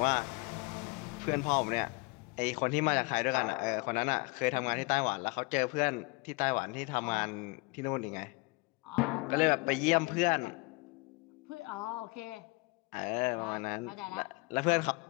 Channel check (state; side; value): quieter; right; 26.5 dB